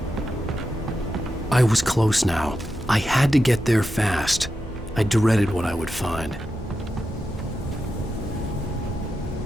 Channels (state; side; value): normal; both; correlation 0.89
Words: I was close now. I had to get there fast. I dreaded what I would find.